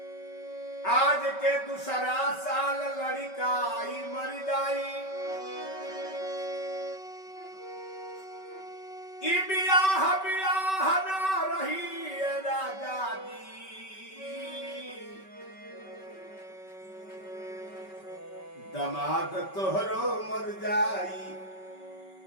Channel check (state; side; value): late; right; 5.2 ms